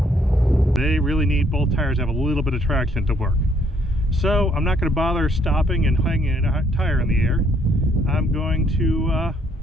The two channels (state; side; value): normal; both; correlation 0.68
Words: They really need both tires to have a little bit of traction to work. So I'm not going to bother stopping and hanging a tire in the air. I'm going to